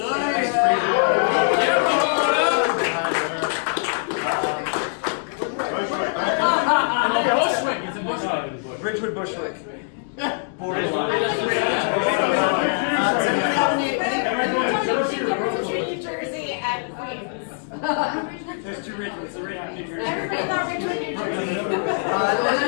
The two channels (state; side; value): silent; right; digital silence